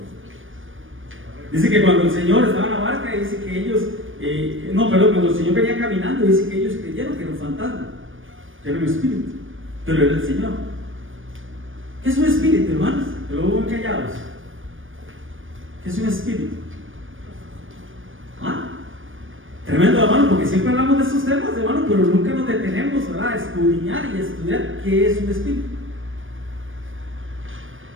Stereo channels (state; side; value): late; left; 0.58 ms